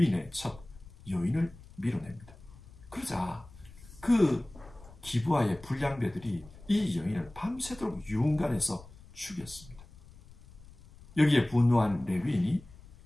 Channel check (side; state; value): left; noise; rumble, 21 dB below the sound